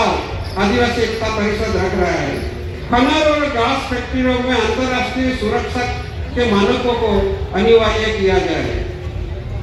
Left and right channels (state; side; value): identical; both; correlation 1.00